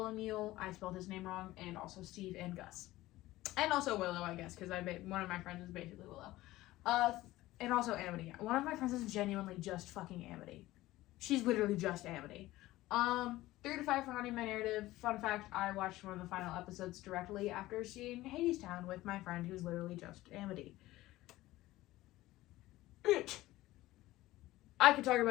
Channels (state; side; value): quieter; right; 17.1 dB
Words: I spelled his name wrong, and also Steve and Gus. And also Willow, I guess, because one of my friends is basically Willow. And also Amity. One of my friends is genuinely just fucking Amity. She's literally just Amity. 3 to 5 for haunting my narrative. Fun fact, I watched one of the final episodes directly after seeing Hadestown with my friend who's literally just Amity. I could talk